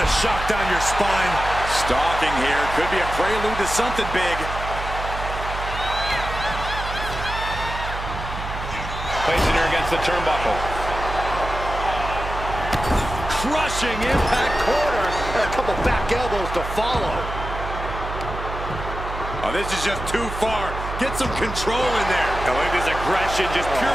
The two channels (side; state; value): right; noise; hum, 7 dB below the sound